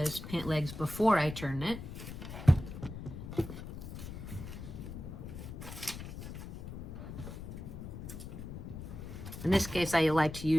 pant legs before I turn it. In this case, I like to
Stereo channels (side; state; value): left; noise; rumble, 9 dB below the sound